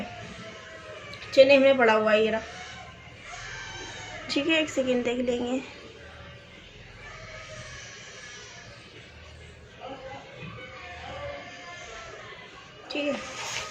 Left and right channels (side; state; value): both; identical; correlation 1.00